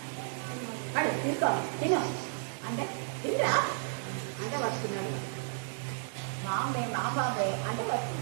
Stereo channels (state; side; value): silent; left; digital silence